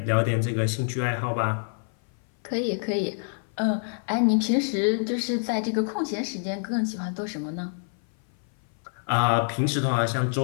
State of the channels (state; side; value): silent; right; 57 dB below the other